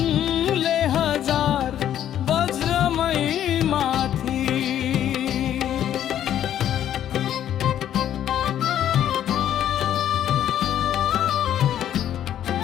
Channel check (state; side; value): quieter; right; 10.8 dB